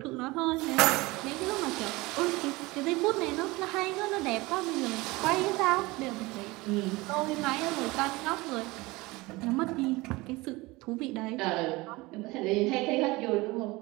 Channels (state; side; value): quieter; left; 22.0 dB